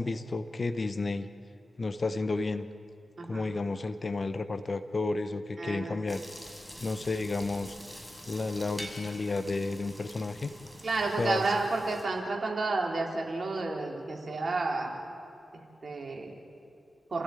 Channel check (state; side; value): normal; both; correlation 0.90